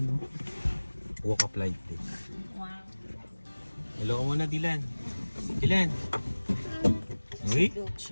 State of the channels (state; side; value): inverted; both; correlation -1.00